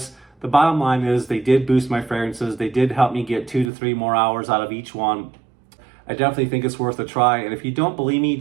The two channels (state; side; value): drops out; left; at 3.7 s